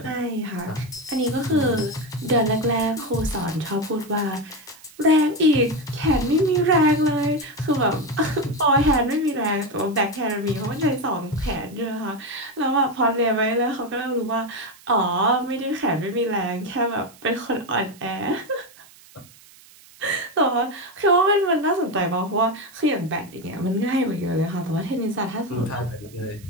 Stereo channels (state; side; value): noise; right; hiss, 24 dB below the sound